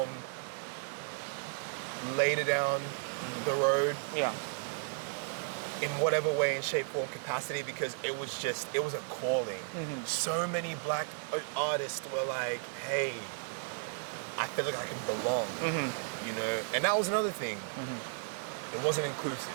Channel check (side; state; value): left; silent; 55 dB below the other